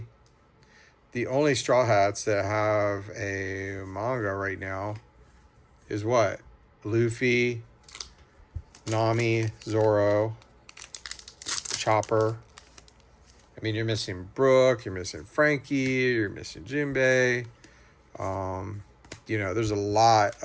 Straw Hats that have a manga right now is what? Luffy, Nami, Zoro, Chopper. I mean, you're missing Brooke, you're missing Frankie, you're missing Jinbei. You know, there's a lot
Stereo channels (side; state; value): both; identical; correlation 1.00